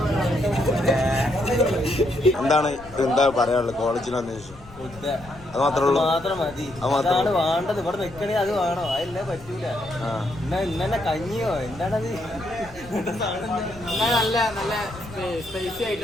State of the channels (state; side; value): noise; left; rumble, 20 dB below the sound